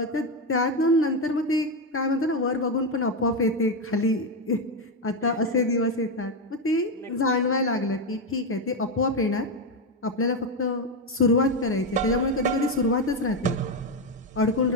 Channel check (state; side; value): normal; both; correlation 0.08